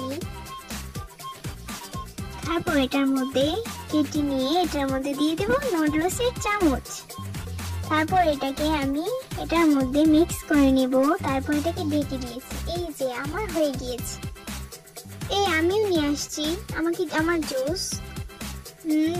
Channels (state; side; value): identical; both; correlation 1.00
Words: তারপর এটার মধ্যে কেটে নিয়ে এটার মধ্যে দিয়ে দেব নুডলসের চামচ। তারপর এটাকে আমি এটার মধ্যে মিক্স করে নিব। তারপর এটাকে ঢেকে দিয়েছি। এই যে আমার হয়ে গিয়েছে। এই আমিও নিয়ে আসছি আমার জুস।